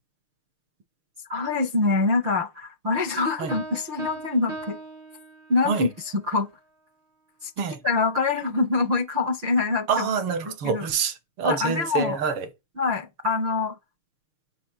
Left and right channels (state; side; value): late; left; 6.5 ms